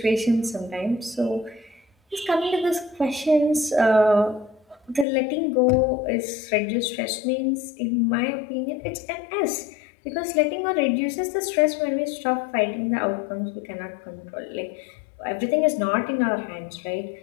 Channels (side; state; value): right; drops out; at 5.1 s